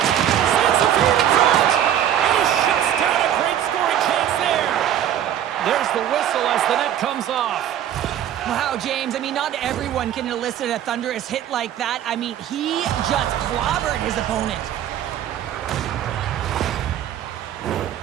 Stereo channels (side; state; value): left; quieter; 10.7 dB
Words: the feed in front. And he shuts down a great scoring chance there. There's the whistle as the net comes off. Wow, James, I mean, not everyone can elicit a thunderous hit like that. I mean, he just clobbered his opponent.